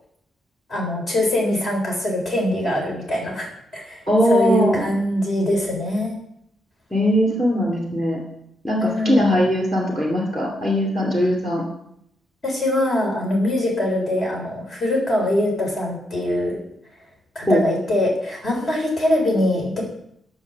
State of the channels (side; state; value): both; normal; correlation 0.79